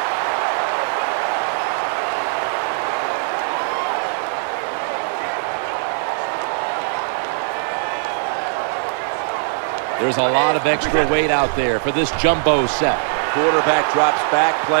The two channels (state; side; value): silent; left; digital silence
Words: There's a lot of extra weight out there for this jumbo set. Quarterback drops back,